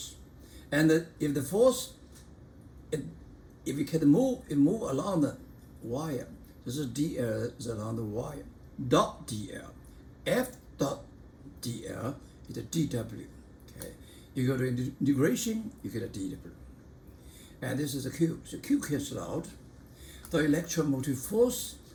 And if the force, if you can move, it move along the wire. This is dl is along the wire. Dot dl. F dot dl is a dw. Okay. You go to integration, you get a dw. And this is a Q. So Q cancels out. The electromotive force,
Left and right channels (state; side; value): identical; both; correlation 1.00